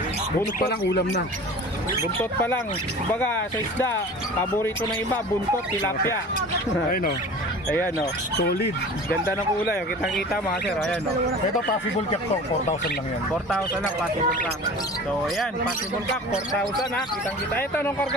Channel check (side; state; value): both; normal; correlation 0.39